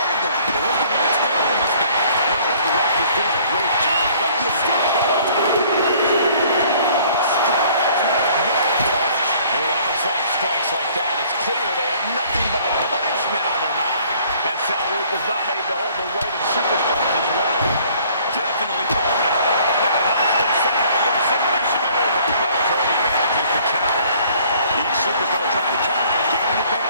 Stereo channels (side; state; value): both; inverted; correlation -0.57